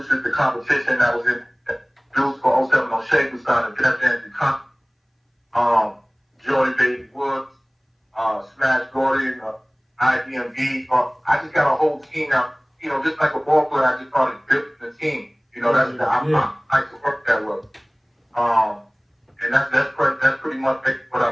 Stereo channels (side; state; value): both; identical; correlation 1.00